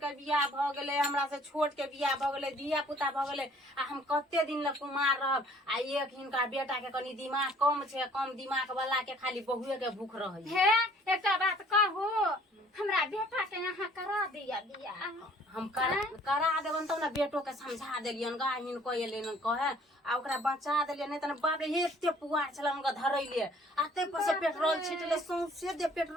बियाह भ गेलै, हमरा से छोट के बियाह भ गेलै, धिया पुता भ गेलै, आ हम कते दिन ल कुमार रहब। आ एक हिनका बेटा के कनी दिमाग कम छै, कम दिमाग वाला के खाली बहुए के भूख रहै हे एकटा बात कहू, हमरा बेटा के यहाँ करा दिया बियाह। हम करा देबन तब ना बेटो के समझा देलियन गा। हिनको एलेन कहे आ ओकरा बचा देलियन, नहीं त बाप रे एते पुआर छलन ग धरैले, आते पर से पेट्रोल छिटले, सौंसे दे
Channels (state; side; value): normal; both; correlation 0.56